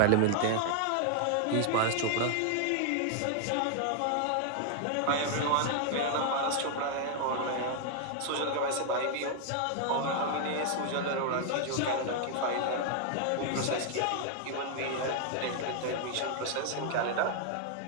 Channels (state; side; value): different; both; correlation 0.00